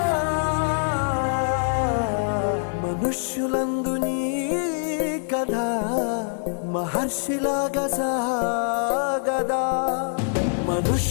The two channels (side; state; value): right; silent; digital silence